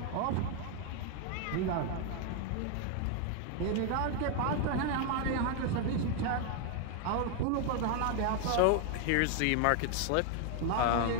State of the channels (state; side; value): different; both; correlation 0.01